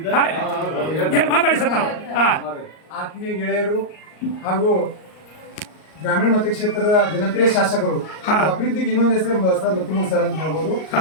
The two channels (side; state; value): right; late; 38 ms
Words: ಎರಡು ಮಾತಾಡಿ ಸರ್ ತಾವು. ಆತ್ಮೀಯ ಗೆಳೆಯರು ಹಾಗೂ ಗ್ರಾಮೀಣ ಮತಕ್ಷೇತ್ರದ ಜನಪ್ರಿಯ ಶಾಸಕರು, ಅಭಿವೃದ್ಧಿಗೆ ಇನ್ನೊಂದು ಹೆಸರು ಬಸವರಾಜ ಬತ್ತಿಮೂಡು ಸರ್ ಅಂತ ಹೇಳ್ಬೋದು.